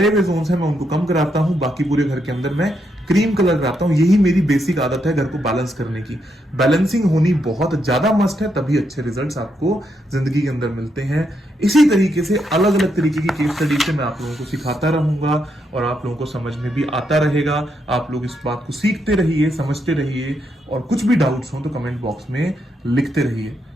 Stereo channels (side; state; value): both; normal; correlation 0.79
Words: हुए जोन्स हैं मैं उनको कम कराता हूं, बाकी पूरे घर के अंदर मैं क्रीम कलर कराता हूं। यही मेरी बेसिक आदत है घर को बैलेंस करने की। बैलेंसिंग होनी बहुत ज्यादा मस्ट है, तभी अच्छे रिजल्ट्स आपको जिंदगी के अंदर मिलते हैं। इसी तरीके से अलग अलग तरीके की केस स्टडी से मैं आप लोगों को सिखाता रहूंगा और आप लोगों को समझ में भी आता रहेगा। आप लोग इस बात को सीखते रहिए, समझते रहिए, और कुछ भी डाउट्स हो तो कमेंट बॉक्स में लिखते रहिए।